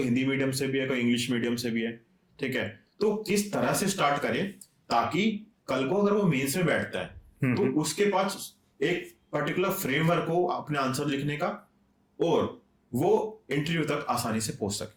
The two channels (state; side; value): identical; both; correlation 1.00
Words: हिंदी मीडियम से भी है, कोई इंग्लिश मीडियम से भी है, ठीक है, तो किस तरह से स्टार्ट करें ताकि कल को अगर वो मेंस में बैठता है तो उसके पास एक पर्टिकुलर फ्रेमवर्क हो अपने आंसर लिखने का, और वो इंटरव्यू तक आसानी से पहुंच सके.